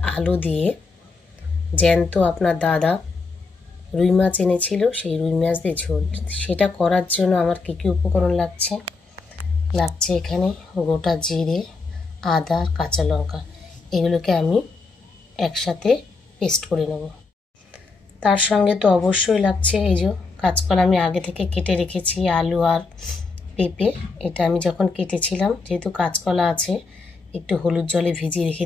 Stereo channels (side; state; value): right; quieter; 4.1 dB